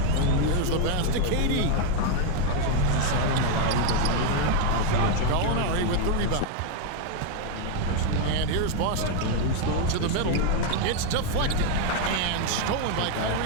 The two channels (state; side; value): different; both; correlation 0.01